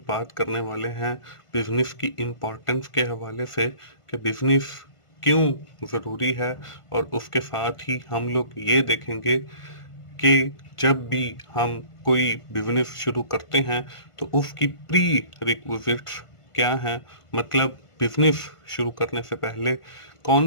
बात करने वाले हैं बिजनेस की इम्पोर्टेंस के हवाले से कि बिजनेस क्यों ज़रूरी है, और उसके साथ ही हम लोग ये देखेंगे कि जब भी हम कोई बिजनेस शुरू करते हैं तो उसकी प्री रिक्विजिट्स क्या हैं, मतलब बिजनेस शुरू करने से पहले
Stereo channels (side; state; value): right; late; 1.5 ms